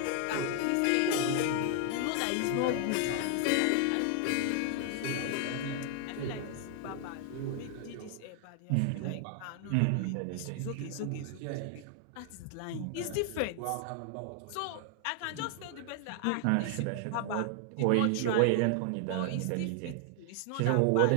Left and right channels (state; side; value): different; both; correlation 0.00